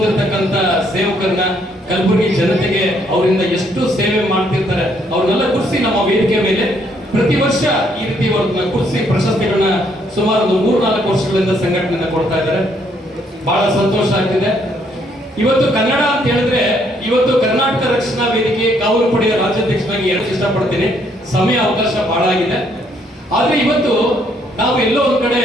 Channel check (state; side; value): normal; both; correlation 0.69